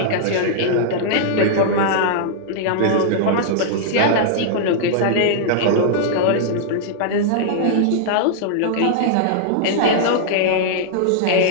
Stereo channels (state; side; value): different; both; correlation -0.01